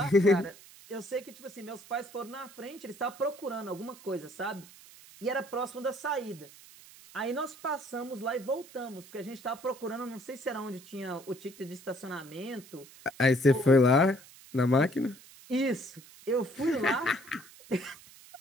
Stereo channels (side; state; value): right; noise; hiss, 21 dB below the sound